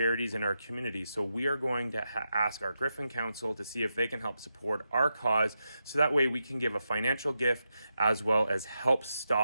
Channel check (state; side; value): inverted; both; correlation -0.86